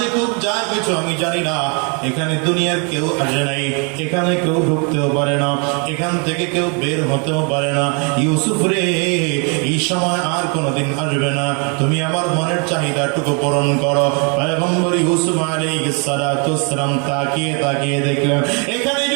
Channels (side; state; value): left; quieter; 35.9 dB